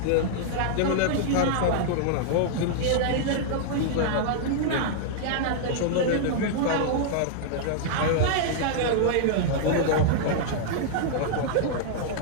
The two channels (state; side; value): different; both; correlation -0.01